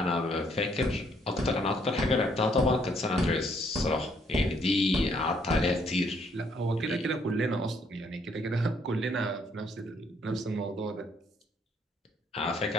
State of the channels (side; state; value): both; normal; correlation 0.68